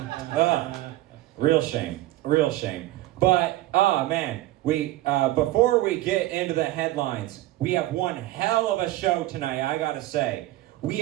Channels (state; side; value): quieter; left; 16.5 dB